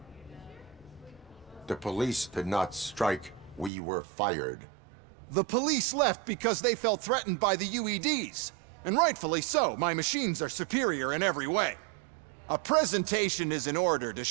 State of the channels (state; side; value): drops out; left; at 3.7 s